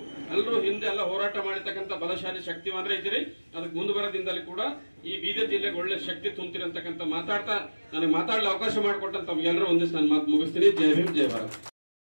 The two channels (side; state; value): both; inverted; correlation -1.00